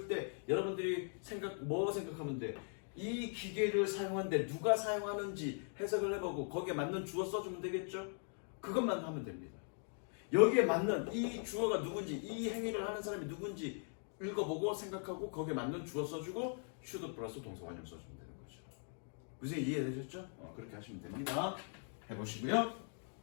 때 여러분들이 뭐 생각하면 돼? 이 기계를 사용하는데 누가 사용하는지 해석을 해보고 거기에 맞는 주어 써주면 되겠죠? 그것만 하면 됩니다. 여기에 맞는 이 주어가 누군지 이 행위를 하는 사람이 누군지 읽어보고 생각하고 거기에 맞는 주어 써주고 should 플러스 동사 원형 써주면 되는 거죠. 무슨 이해되셨죠? 그렇게 하시면 됩니다. 해보시고요.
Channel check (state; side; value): silent; right; 51 dB below the other